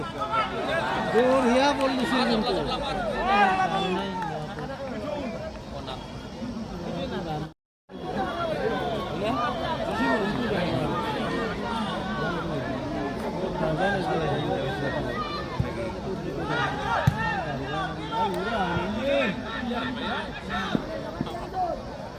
বড়িয়া বলছিল কিন্তু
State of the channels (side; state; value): both; identical; correlation 1.00